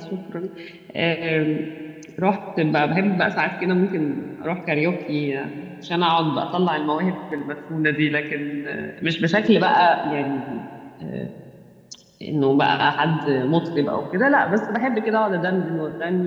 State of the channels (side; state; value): both; identical; correlation 1.00